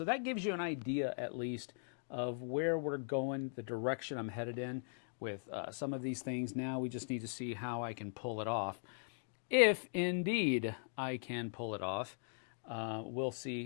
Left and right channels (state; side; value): silent; right; digital silence